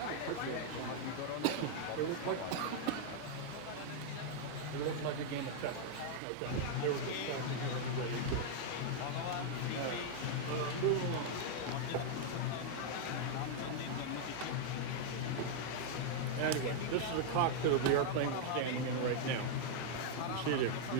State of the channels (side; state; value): both; different; correlation 0.00